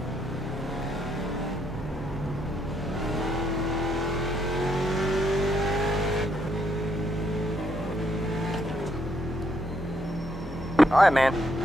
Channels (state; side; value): normal; both; correlation 0.74